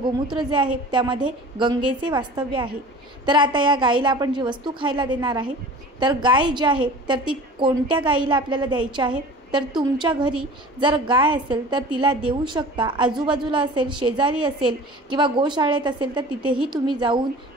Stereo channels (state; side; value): normal; both; correlation 0.40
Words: जे आहे त्यामध्ये गंगेचे वास्तव्य आहे। तर आता या गायीला आपण जी वस्तू खायला देणार आहे तर गाय जी आहे तर ती कोणत्या गायीला आपल्याला द्यायची आहे तर तुमच्या घरी जर गाय असेल तर तिला देऊ शकता। आजूबाजूला असेल, शेजारी असेल किंवा गोशाळेत असेल तर तिथेही तुम्ही जाऊन